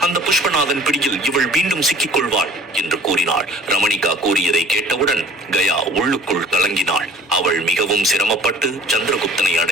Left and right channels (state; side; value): normal; both; correlation 0.49